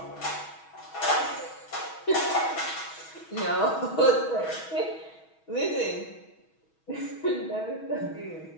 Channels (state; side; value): late; right; 6.2 ms